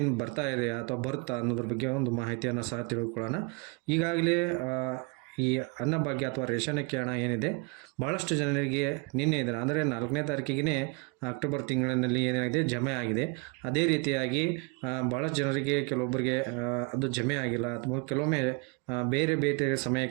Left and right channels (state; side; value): quieter; left; 30.1 dB